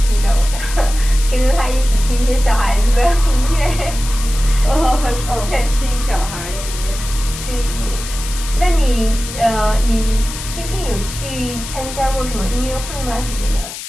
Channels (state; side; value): noise; left; hiss, 10 dB below the sound